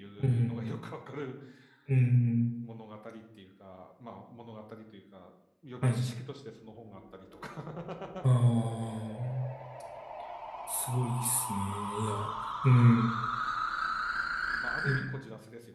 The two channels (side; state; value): both; identical; correlation 1.00